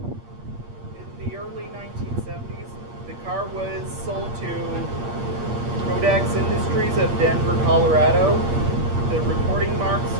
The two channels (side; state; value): left; late; 8.6 ms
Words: In the early 1970s, Industries of Denver, Colorado. The reporting marks